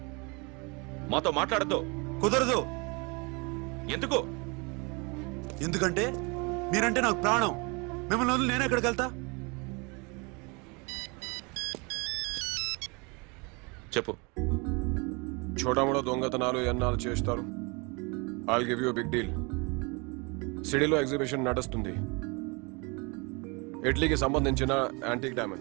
మాతో మాట్లాడద్దు. కుదరదు. ఎందుకు? ఎందుకంటే మీరంటే నాకు ప్రాణం. మిమ్మల్ని వదిలి నేను ఎక్కడికి వెళ్తా? చెప్పు. చోటామోటా దొంగతనాలు ఎన్నాళ్ళు చేస్తారు? I'll give you big deal. సిటీలో ఎగ్జిబిషన్ నడుస్తుంది. ఇటలీకి సంబంధించిన యాంటిక్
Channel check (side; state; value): left; quieter; 29.6 dB